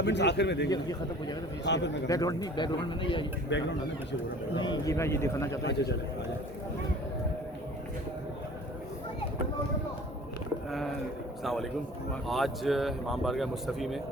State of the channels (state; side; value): normal; both; correlation 0.47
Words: आखिर में देंगे ये खत्म हो जाएगा तो हाँ, फिर मैं बैकग्राउंड नहीं बैकग्राउंड में नहीं ये बैकग्राउंड आने पीछे बोल रहा नहीं ये मैं ये दिखाना चाहता हूँ। अच्छा चले अस्सलाम वालेकुम। आज इमाम बारगाह मुस्तफ़ी में